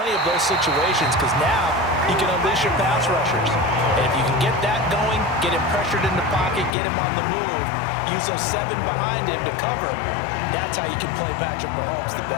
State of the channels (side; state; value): right; drops out; at 6.7 s